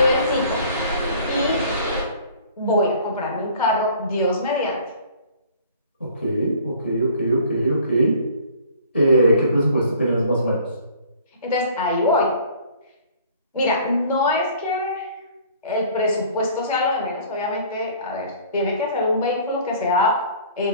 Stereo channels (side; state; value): both; inverted; correlation -0.51